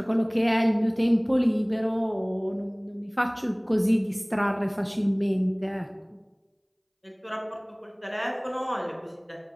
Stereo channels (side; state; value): both; identical; correlation 1.00